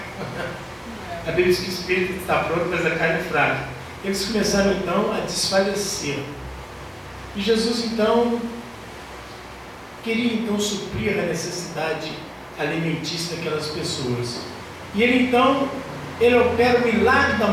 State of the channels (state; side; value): identical; both; correlation 1.00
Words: A Bíblia diz que o espírito está pronto, mas a carne é fraca. Eles começaram então a desfalecer. E Jesus então queria então suprir a necessidade alimentícia daquelas pessoas. E ele opera o milagre da